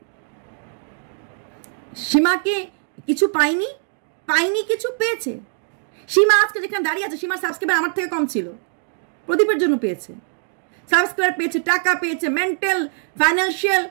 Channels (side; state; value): left; silent; digital silence